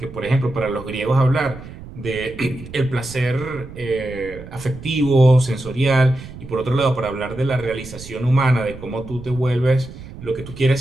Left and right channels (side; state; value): right; noise; rumble, 15 dB below the sound